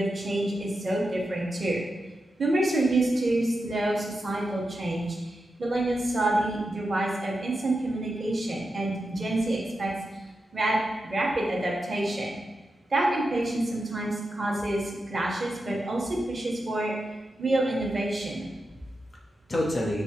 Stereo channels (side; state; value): both; normal; correlation 0.89